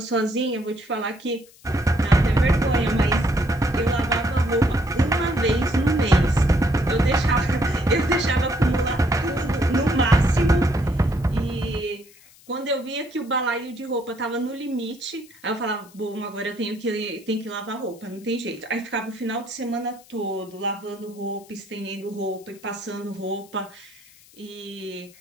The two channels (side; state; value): left; noise; hiss, 25 dB below the sound